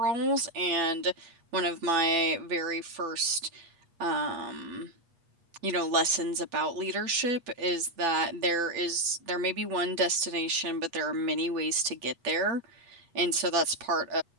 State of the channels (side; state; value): left; late; 8.4 ms